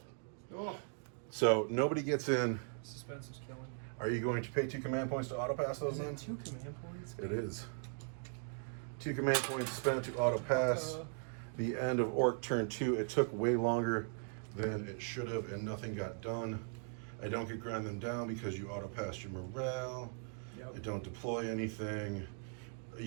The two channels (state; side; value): silent; left; 52 dB below the other